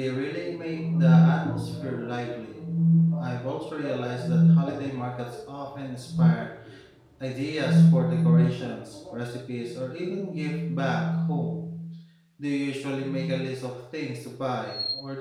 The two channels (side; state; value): both; identical; correlation 1.00